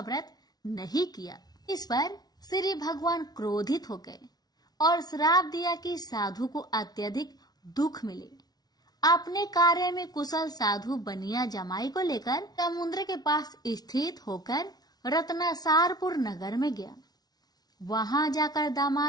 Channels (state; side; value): late; right; 0.19 ms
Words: नहीं किया। इस पर श्री भगवान क्रोधित हो गए और श्राप दिया कि साधु को अत्यधिक दुख मिले। अपने कार्य में कुशल साधु बनिया जमाई को लेकर समुद्र के पास स्थित होकर रत्नासारपुर नगर में गया। वहां जाकर